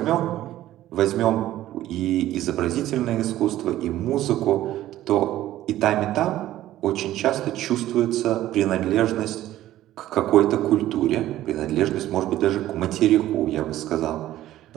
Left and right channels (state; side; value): quieter; left; 14.0 dB